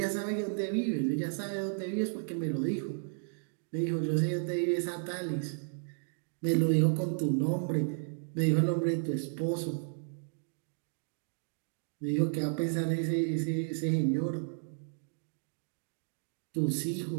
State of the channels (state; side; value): silent; left; digital silence